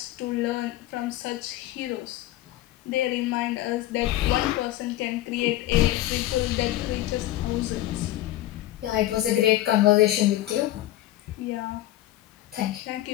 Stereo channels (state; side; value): quieter; right; 14.9 dB